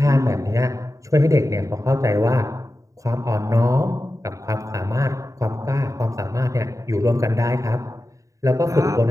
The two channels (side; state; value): left; late; 0.16 ms